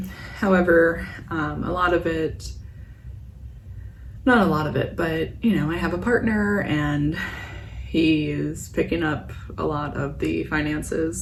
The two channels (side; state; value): both; identical; correlation 1.00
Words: However, a lot of it, not a lot of it, but you know, I have a partner and he is picking up a lot of the